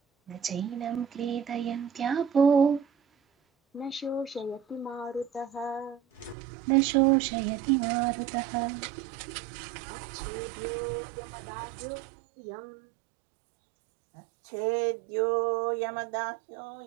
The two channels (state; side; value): drops out; left; at 6.4 s